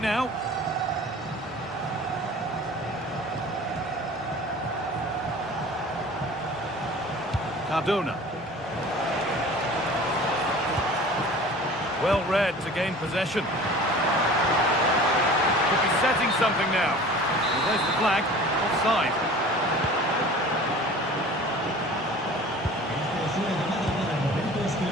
Cardona. Well read to gain possession. Could be setting something now. Well, there's the flag. Offside.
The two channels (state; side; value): normal; both; correlation 0.43